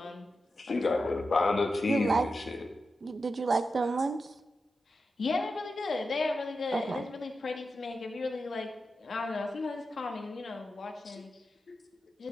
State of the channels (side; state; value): both; normal; correlation 0.90